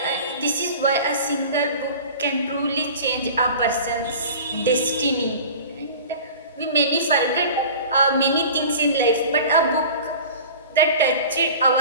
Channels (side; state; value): both; inverted; correlation -0.39